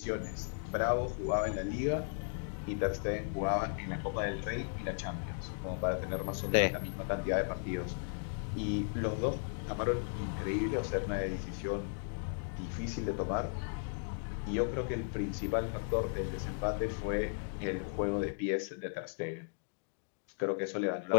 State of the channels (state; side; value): silent; right; digital silence